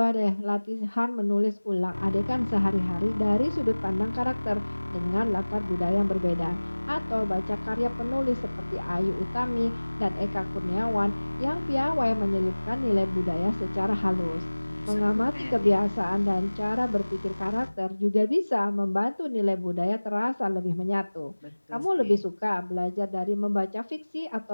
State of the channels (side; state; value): both; inverted; correlation -1.00